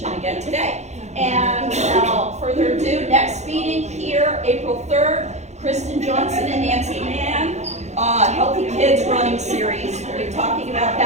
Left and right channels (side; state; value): left; late; 0.33 ms